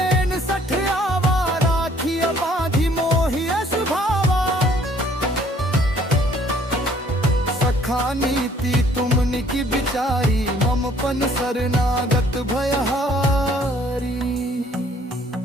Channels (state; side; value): normal; both; correlation 0.59